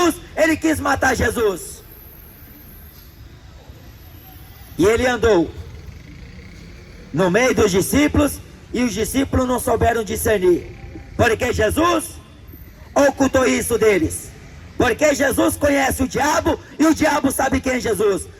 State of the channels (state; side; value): identical; both; correlation 1.00